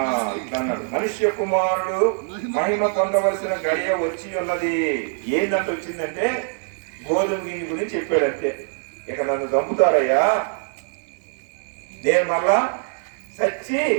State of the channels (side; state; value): left; silent; 63 dB below the other